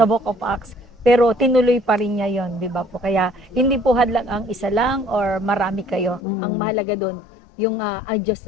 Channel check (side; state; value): right; drops out; at 6.2 s